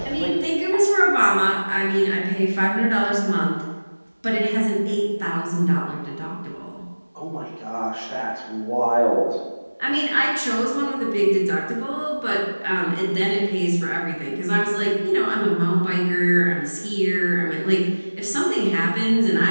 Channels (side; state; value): both; inverted; correlation -1.00